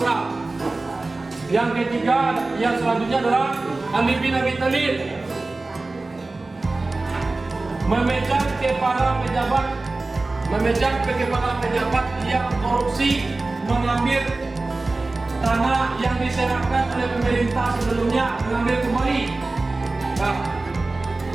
Yang ketiga, yang selanjutnya adalah Ali bin Abi Thalib memecat kepala pejabat yang korupsi, mengambil tanah yang diserahkan oleh pemerintah sebelumnya, mengambil kembali.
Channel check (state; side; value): quieter; left; 3.3 dB